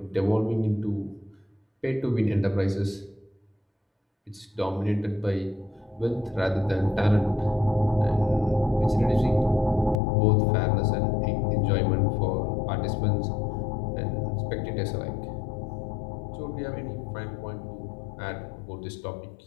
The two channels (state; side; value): drops out; right; at 10.0 s